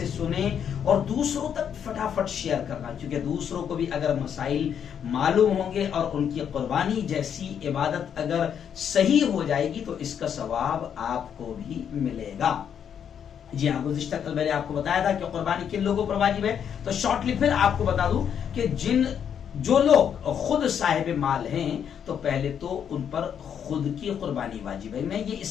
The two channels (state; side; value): quieter; right; 8.3 dB